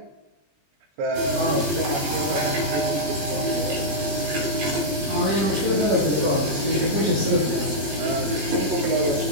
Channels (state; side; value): late; left; 20 ms